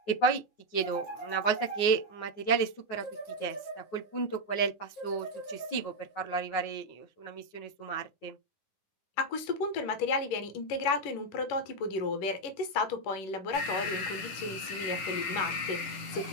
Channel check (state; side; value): late; right; 10 ms